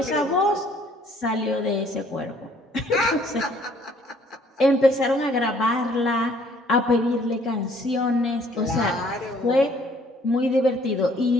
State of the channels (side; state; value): both; normal; correlation 0.60